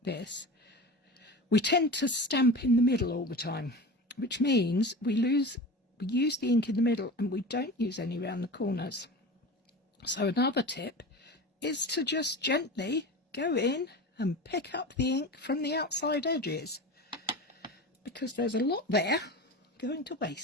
this, we tend to stamp in the middle all the time, which means we use the ink in the middle and we don't use any around the corners. So another tip is to just gently go in and pick up the ink from the outside edges, because there's a lot there going to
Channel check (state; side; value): normal; both; correlation 0.31